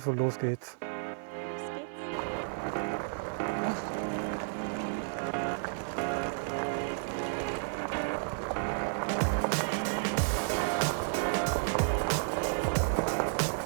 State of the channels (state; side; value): silent; left; digital silence